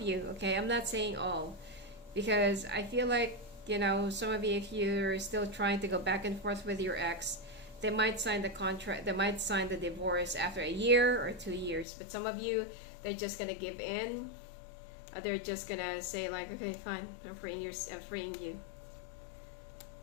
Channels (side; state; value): right; drops out; at 11.9 s